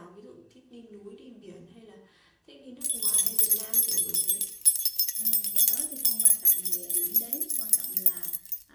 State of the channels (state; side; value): identical; both; correlation 1.00